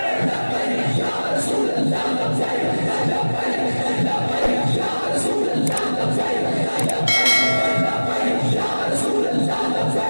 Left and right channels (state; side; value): inverted; both; correlation -1.00